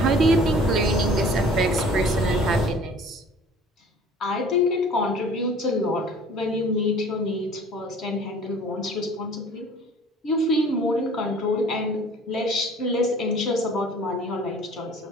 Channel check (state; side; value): normal; both; correlation 0.49